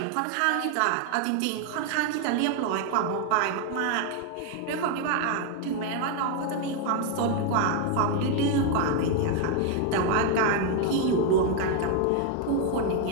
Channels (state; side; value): different; both; correlation 0.01